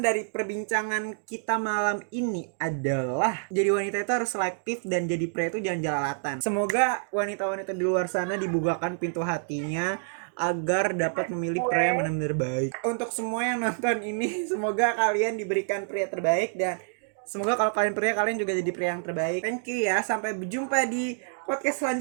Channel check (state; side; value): silent; left; digital silence